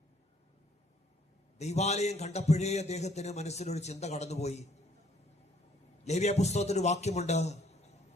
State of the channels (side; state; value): both; normal; correlation 0.63